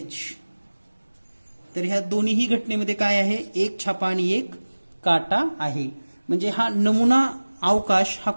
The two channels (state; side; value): inverted; both; correlation -1.00